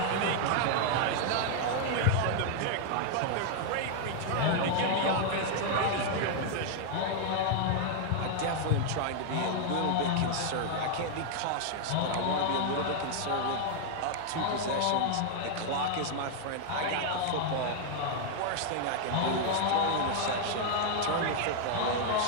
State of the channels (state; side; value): different; both; correlation 0.00